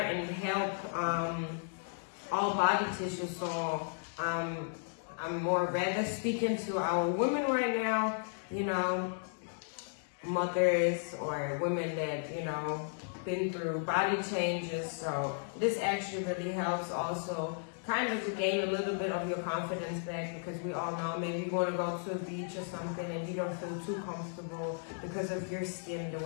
and help all body tissue. So I'm more rather speaking to our women right now, you know, mothers or women that, you know, been through body changes. So this actually really helps also kind of to gain a little bit of your confidence back, because we all know maybe you want to go to a beach or something and you don't feel too comfortable because of your skin, the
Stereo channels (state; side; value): silent; right; digital silence